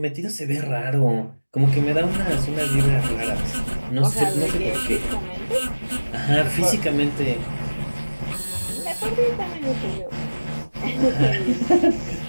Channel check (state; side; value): inverted; both; correlation -1.00